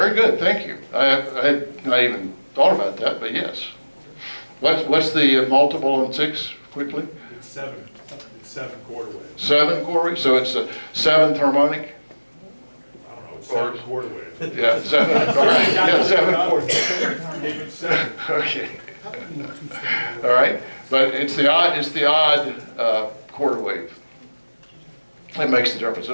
good, thank you. I had not even thought about that, but yes. What's the multiple on 6, quickly? It's 7/4 wave. 7/4, so it's a 7th harmonic? I don't know, it's 7/4 wave. Yeah, 7, all right, yeah, 7/4. Even 7. Okay. All right, but it's the odd quarter wave. That makes the difference.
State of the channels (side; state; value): both; inverted; correlation -1.00